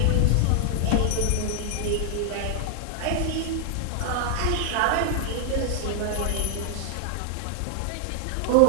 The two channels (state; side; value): different; both; correlation 0.00